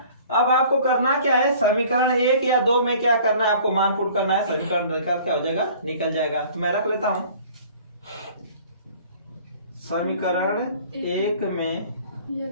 अब आपको करना क्या है, समीकरण 1 या 2 में क्या करना है, आपको मान पुट करना है, समीकरण निकाल क्या हो जाएगा निकल जाएगा। तो मैं रख लेता हूं समीकरण 1 में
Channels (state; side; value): inverted; both; correlation -0.50